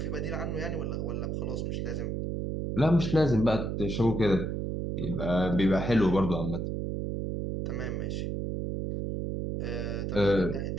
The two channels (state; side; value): noise; right; hum, 2 dB below the sound